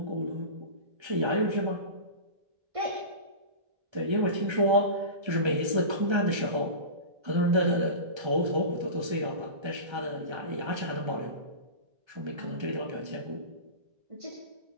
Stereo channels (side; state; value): left; late; 1.3 ms